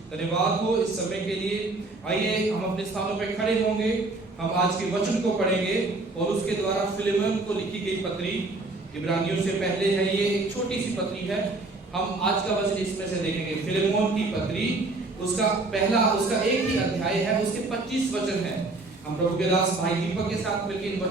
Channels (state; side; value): quieter; left; 3.2 dB